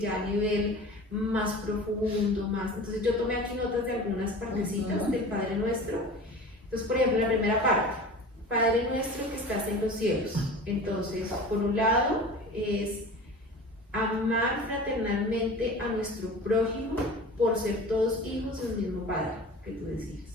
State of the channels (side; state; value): both; normal; correlation 0.37